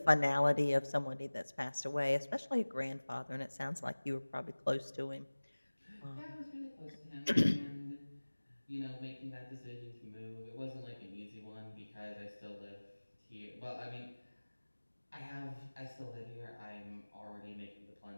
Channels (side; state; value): both; inverted; correlation -1.00